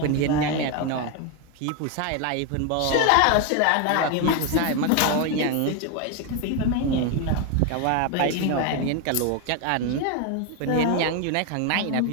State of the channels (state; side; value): different; both; correlation 0.01